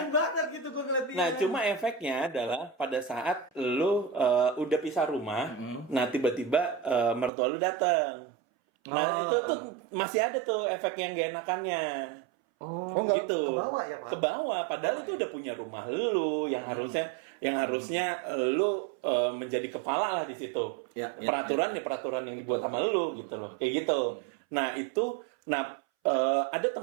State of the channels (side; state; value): left; drops out; at 7.3 s